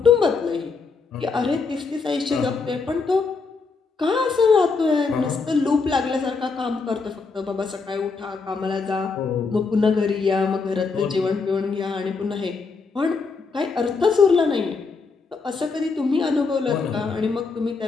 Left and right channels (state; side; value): quieter; right; 4.6 dB